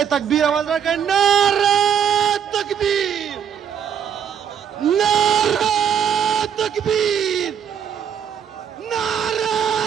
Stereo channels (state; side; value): quieter; left; 8.4 dB